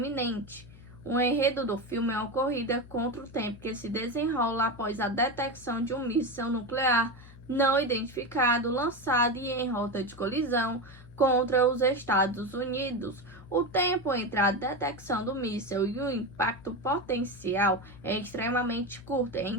O enredo do filme é uma corrida contra o tempo que se desenrola após a detecção de um míssil nuclear não identificado lançado e em rota de colisão contra os Estados Unidos. O tempo entre a detecção do míssil e o impacto potencial é extremamente curto,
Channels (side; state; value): left; noise; hum, 19 dB below the sound